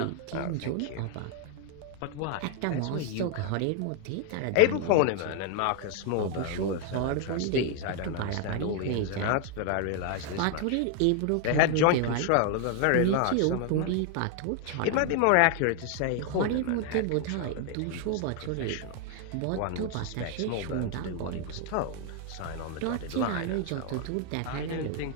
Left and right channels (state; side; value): different; both; correlation 0.00